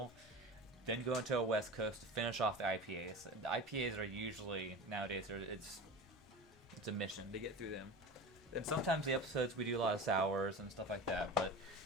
Then go into a West Coast to finish off the IPAs. The IPAs are usually, nowadays, it's a mission to get through them. And sometimes the episodes we do a lot of sours and stuff like that, but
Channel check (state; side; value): normal; both; correlation 0.31